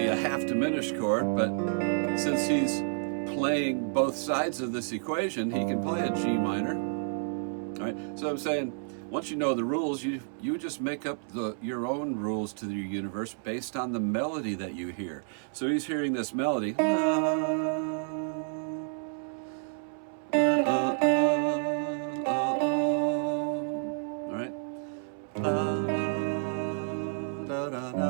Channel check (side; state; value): left; silent; 58 dB below the other